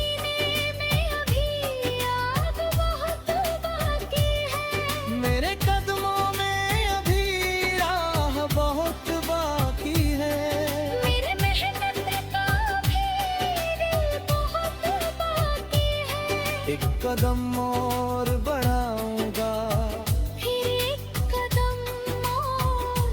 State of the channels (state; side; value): identical; both; correlation 1.00